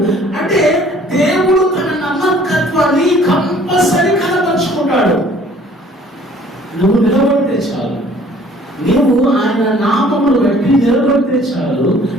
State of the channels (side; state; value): both; normal; correlation 0.55